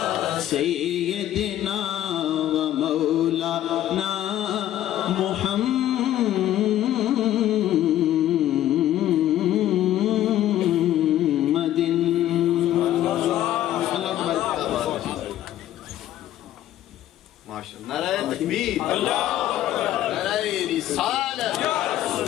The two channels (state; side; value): quieter; right; 12.7 dB